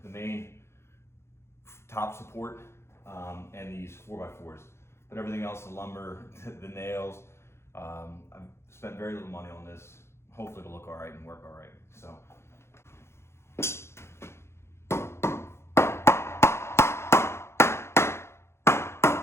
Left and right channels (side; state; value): right; late; 0.13 ms